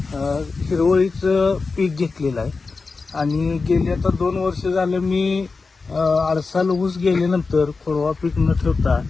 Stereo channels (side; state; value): right; quieter; 4.3 dB